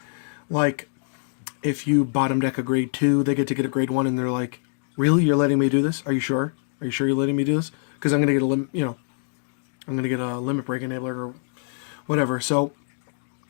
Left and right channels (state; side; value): silent; right; digital silence